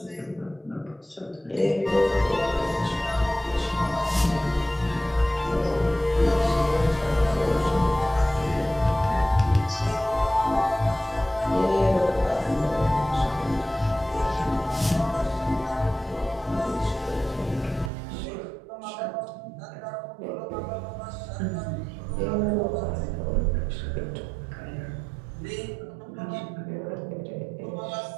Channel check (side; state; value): left; drops out; at 17.9 s